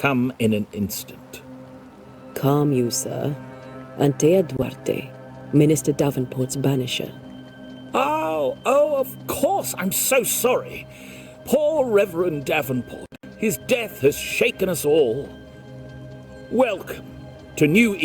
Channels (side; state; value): both; identical; correlation 1.00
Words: in an instant. Calm you, sir. Antea Duarte, Minister Davenport's banisher. Oh, of course. I'm so sorry. Poor Reverend Davenport. His death has shaken us all. Welcome to New